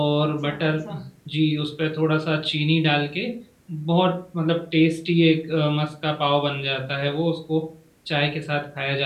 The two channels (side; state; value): both; identical; correlation 1.00